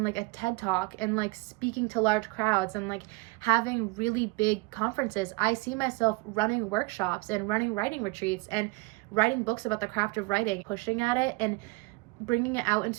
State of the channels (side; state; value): left; quieter; 24.9 dB